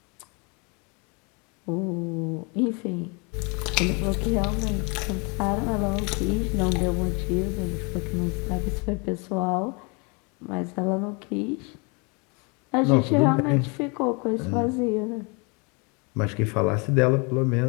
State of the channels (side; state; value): right; quieter; 31.6 dB